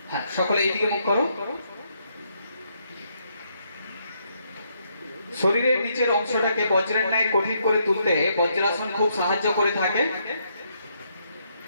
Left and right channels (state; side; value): inverted; both; correlation -0.75